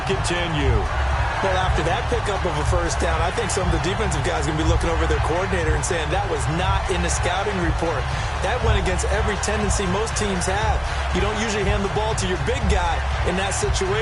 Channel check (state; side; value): identical; both; correlation 1.00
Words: continue. Well, after that pickup of a 1st down, I think some of the defensive guys are going to be looking over their coordinator and saying that was not in the scouting report. That went against every tendency most teams have. You don't usually hand the ball to your big guy in that